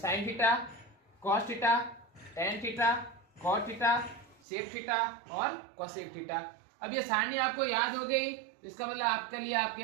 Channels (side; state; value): left; drops out; at 4.4 s